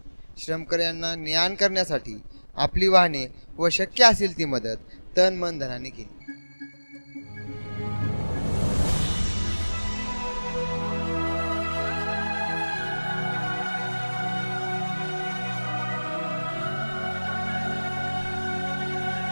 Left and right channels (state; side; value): inverted; both; correlation -1.00